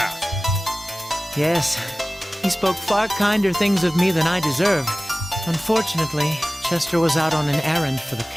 Yes, he spoke far kinder things of me than I deserve. Unfortunately, Chester was out on an errand for the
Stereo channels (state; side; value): normal; both; correlation 0.97